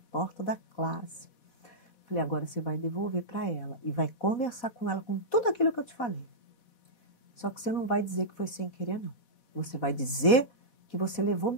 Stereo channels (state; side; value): late; right; 4.1 ms